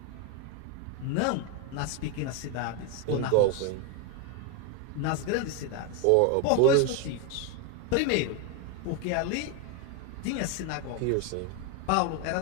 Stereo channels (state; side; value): different; both; correlation 0.02